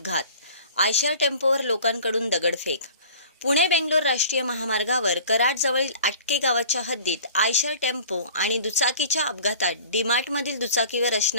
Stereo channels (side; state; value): both; inverted; correlation -0.45